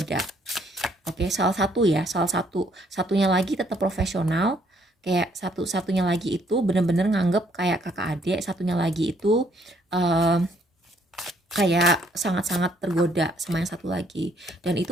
Oke, satunya lagi tetap profesional, kayak satunya lagi itu bener-bener nganggep kayak kakak adik, satunya lagi itu kayak sangat-sangat tergoda sama yang satu lagi, dan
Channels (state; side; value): normal; both; correlation 0.67